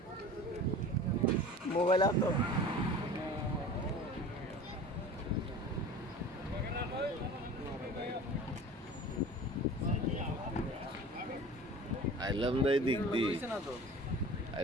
मोबाइल आप तो আইলাম দাই দিক দি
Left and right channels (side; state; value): both; normal; correlation 0.39